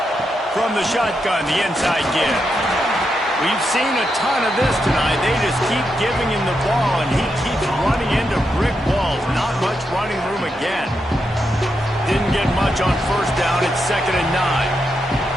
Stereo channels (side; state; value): both; normal; correlation 0.84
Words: From the shotgun, the inside give. We've seen a ton of this tonight. They just keep giving him the ball, and he keeps running into brick walls. Not much running room again. Didn't get much on first down. It's 2nd and